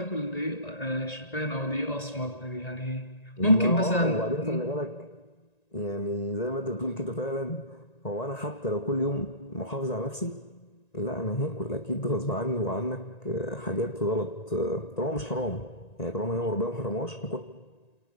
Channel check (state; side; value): late; right; 1.9 ms